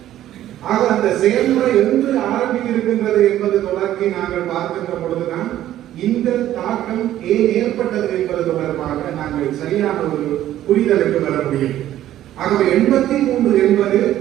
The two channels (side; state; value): left; quieter; 12.8 dB